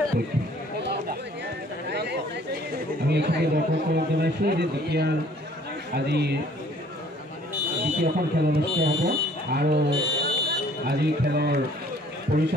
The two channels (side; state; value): both; normal; correlation 0.56